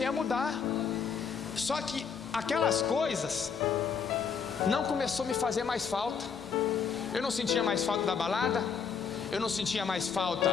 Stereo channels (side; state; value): right; quieter; 6.2 dB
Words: a mudar. Só que aquelas coisas não começou a me fazer mais falta. Eu não sentia mais falta da balada, eu não sentia mais